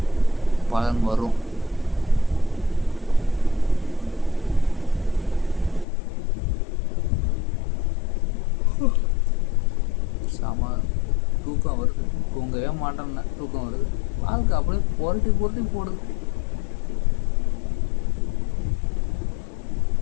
பலன் வரும். சாமா தூக்கம் வருது, தூங்கவே மாட்டேன்னா தூக்கம் வருது. வாழ்க்கை அப்படியே புரட்டி போடுது.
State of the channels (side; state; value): right; drops out; at 5.9 s